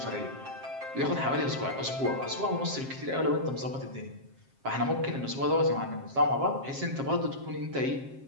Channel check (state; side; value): late; left; 7.5 ms